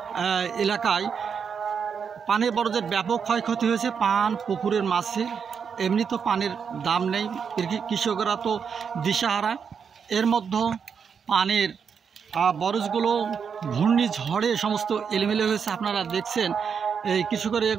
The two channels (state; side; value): quieter; left; 6.6 dB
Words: এলাকায় পানির বরজের ব্যাপক ক্ষয়ক্ষতি হয়েছে। পান পুকুরের মাছে এমনি তো পানির দাম নেই, কৃষকরা তো দিশাহারা। এর মধ্যে পানির বরজগুলো ঘূর্ণিঝড়ে সমস্ত এলোমেলো হয়েছে। আপনারা দেখছেন এই কৃষকরা